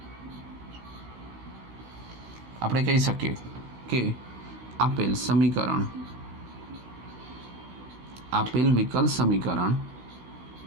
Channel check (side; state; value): left; late; 16 ms